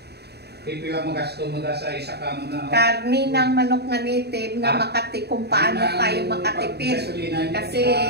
Pipila mo gasto mo sa isa ka mo na. karni ng manok na native na makati kung paano tayo makatipid. Kasi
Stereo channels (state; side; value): late; left; 0.48 ms